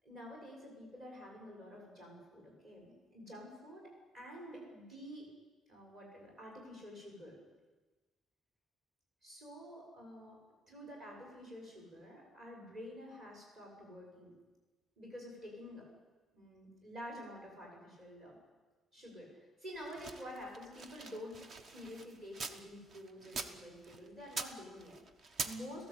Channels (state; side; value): normal; both; correlation 0.66